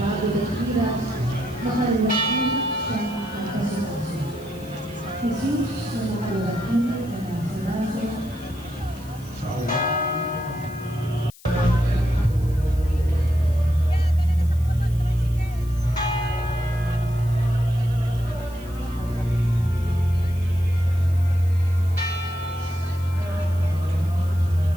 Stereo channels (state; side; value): noise; left; hiss, 23 dB below the sound